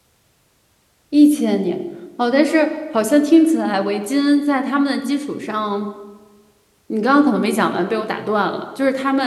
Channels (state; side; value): identical; both; correlation 1.00